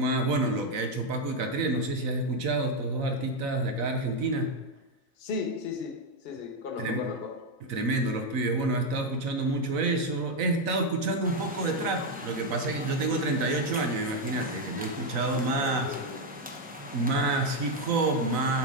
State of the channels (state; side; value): normal; both; correlation 0.04